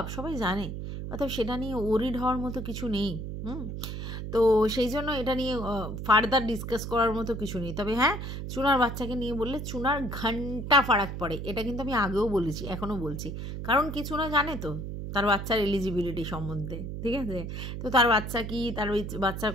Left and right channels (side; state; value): right; noise; hum, 6 dB below the sound